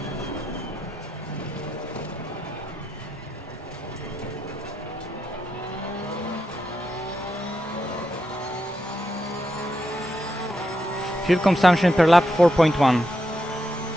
Fuel consumption per lap 4.1.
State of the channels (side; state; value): both; normal; correlation 0.84